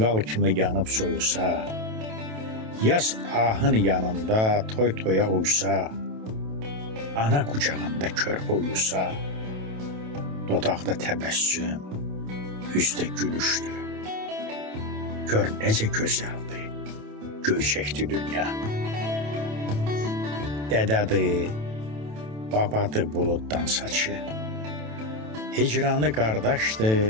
kimi yanıp soyusa, yaz ahın yanında toy toya uysa, ana kucağında körpə uyusa, dodaqda təbəssüm, üzdə gülüşdü. Gör necə gözəldi, göyçəkdi dünya. Dədədir, babadır buluddan saçı, hicranı qardaşdı,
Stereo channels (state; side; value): late; left; 27 ms